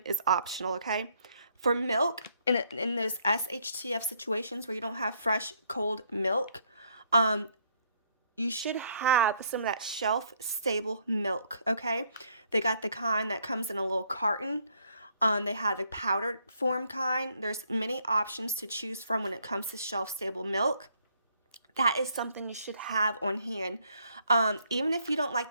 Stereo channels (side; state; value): both; inverted; correlation -0.68